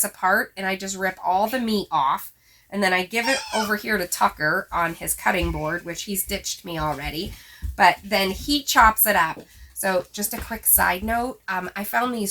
apart, and I just rip all the meat off. And then I give it over here to Tucker on his cutting board, which he's ditched me already. But then he chops it up. So just a quick side note, I found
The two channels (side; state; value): both; identical; correlation 1.00